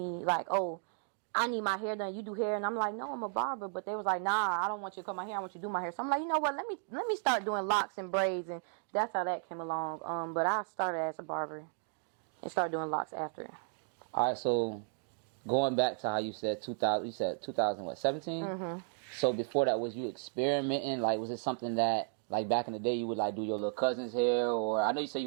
like, oh, I need my hair done, you do hair, and I'm like, no, I'm a barber, but they was like, nah, I don't want you to cut my hair, I want you to do my hair. So I'm like, you know what, let me start doing locks and braids, and that's how that came along. But I started as a barber and started doing locks after. All right, so going back to how you said 2000, you said 2017? Mm-hmm. So before that, was you experimenting? Like, was it something that, like, back in the day, you would, like, do your little cousin's hair? Or I know you said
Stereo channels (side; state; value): left; silent; 55 dB below the other